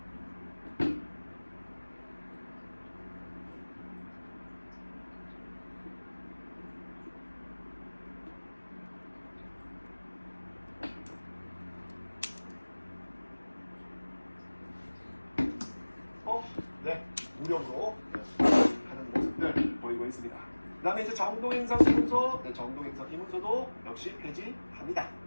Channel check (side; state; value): both; inverted; correlation -1.00